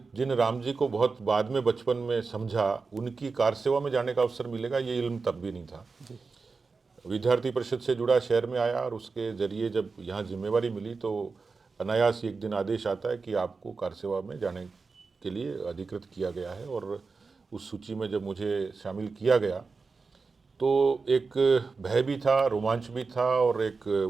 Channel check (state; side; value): quieter; left; 4.5 dB